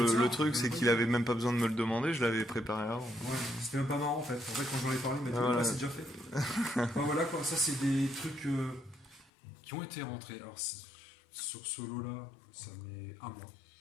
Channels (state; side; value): drops out; right; at 9.3 s